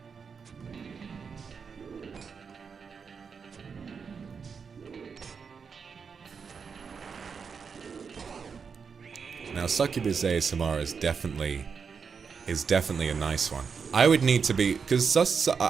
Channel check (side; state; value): left; quieter; 5.9 dB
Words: Now, Succubus ASMR is definitely a nice one. I would need to be, because